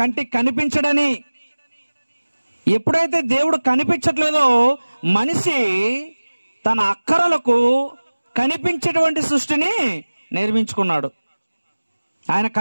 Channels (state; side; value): inverted; both; correlation -1.00